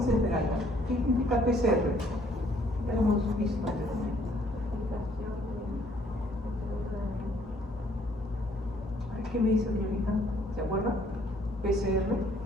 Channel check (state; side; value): normal; both; correlation 0.63